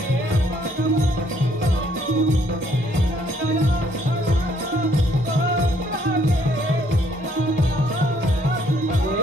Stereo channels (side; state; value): both; normal; correlation 0.66